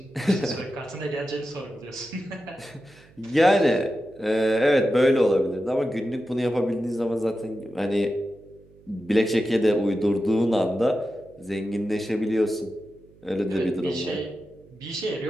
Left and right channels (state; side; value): noise; right; hum, 27 dB below the sound